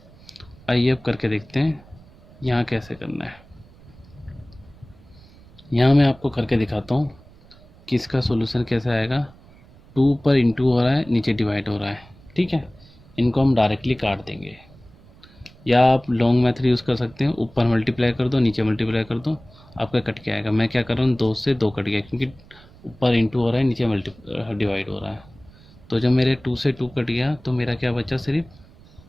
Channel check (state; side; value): noise; right; rumble, 24 dB below the sound